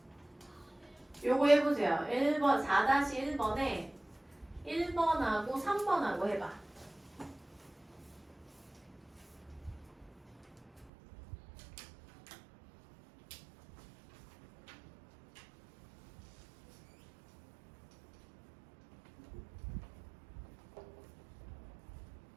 요거 해보세요. 1번 4-1번에 1번하고 3번하고 해봐.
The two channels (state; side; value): drops out; left; at 10.9 s